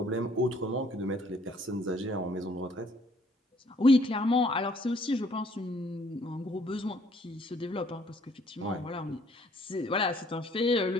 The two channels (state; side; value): normal; both; correlation 0.62